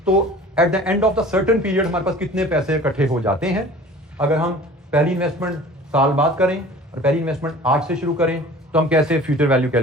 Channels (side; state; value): both; normal; correlation 0.44